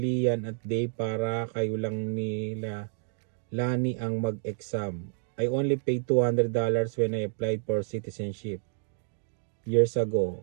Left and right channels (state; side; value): silent; left; digital silence